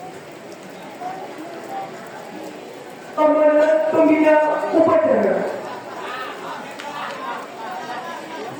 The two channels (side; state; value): both; identical; correlation 1.00